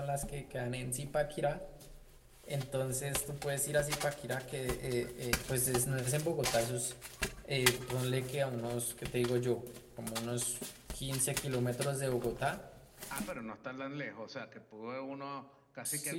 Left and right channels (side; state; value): both; identical; correlation 1.00